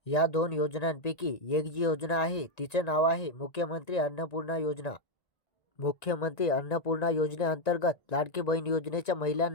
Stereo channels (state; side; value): late; right; 1.9 ms